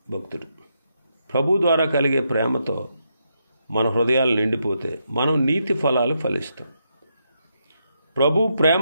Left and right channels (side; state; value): both; inverted; correlation -0.81